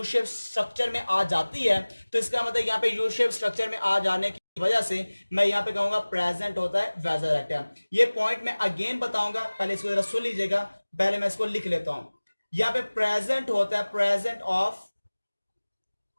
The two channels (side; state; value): both; inverted; correlation -1.00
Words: शेप स्ट्रक्चर में आ जाती है। तो इसका मतलब यहां पे यू शेप स्ट्रक्चर में आ जाने की वजह से मैं यहां पे कहूंगा प्रेजेंट होता है वेजा रेक्टा। ये पॉइंट मैं अगेन बताऊंगा, पहले इसको जरा सुन लीजिएगा, पहले मैं इसको लिख लेता हूं। यहां पे प्रेजेंट होता है प्रेजेंट ऑफ